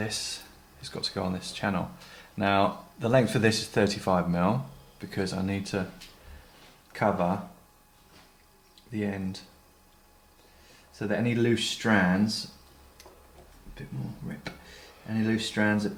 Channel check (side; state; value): both; identical; correlation 1.00